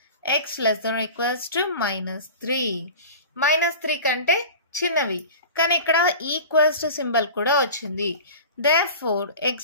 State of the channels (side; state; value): both; inverted; correlation -0.36